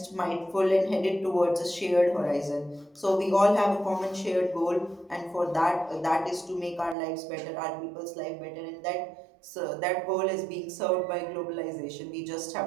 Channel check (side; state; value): left; drops out; at 7.0 s